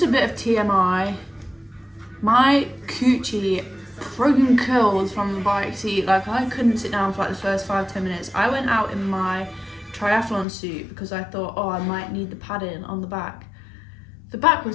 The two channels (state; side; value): drops out; right; at 10.5 s